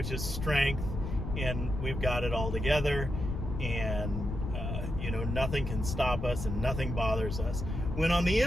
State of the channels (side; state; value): left; noise; rumble, 4 dB below the sound